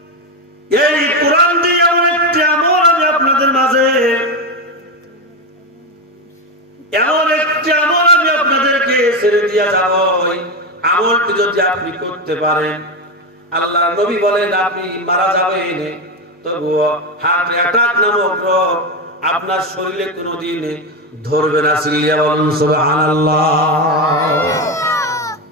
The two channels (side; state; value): both; normal; correlation 0.13